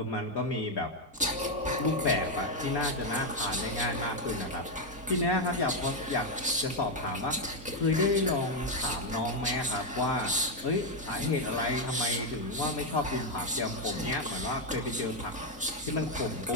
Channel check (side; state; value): both; normal; correlation 0.04